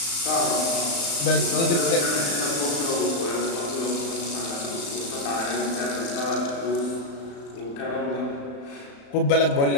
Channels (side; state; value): right; late; 35 ms